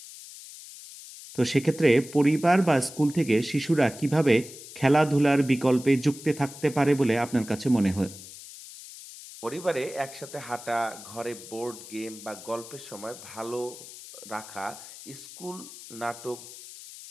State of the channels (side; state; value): left; noise; hiss, 15 dB below the sound